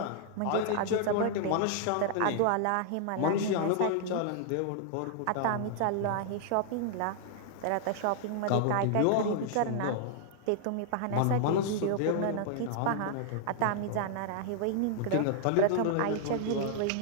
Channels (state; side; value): different; both; correlation -0.01